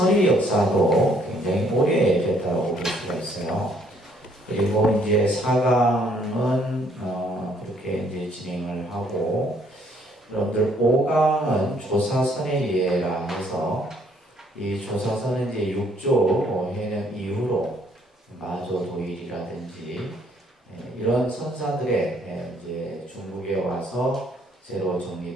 역사도 굉장히 오래됐다고 볼 수가 있어요. 그리고 이제 4강은 그렇게 이제 진행을 하고, 여러분들 5강은 조사선의 예라 해서 이 조사선은 이제 6조 해명 이후로 마조 도일이라든지 이런 선사들의 이제 중국에 와서 새로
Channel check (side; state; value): both; normal; correlation 0.65